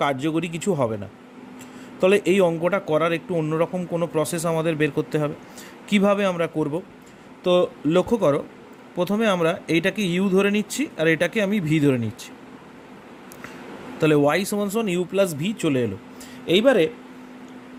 কার্যকরী কিছু হবে না। তাহলে এই অঙ্কটা করার একটু অন্যরকম কোনো প্রসেস আমাদের বের করতে হবে। কিভাবে আমরা করব? তো লক্ষ্য করো, প্রথমে আমরা এইটাকে ইউ ধরে নিচ্ছি আর এটাকে আমি ভি ধরে নিচ্ছি। তাহলে ওয়াই সমান সমান ইউ প্লাস ভি চলে এলো। এইবারে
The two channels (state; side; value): identical; both; correlation 1.00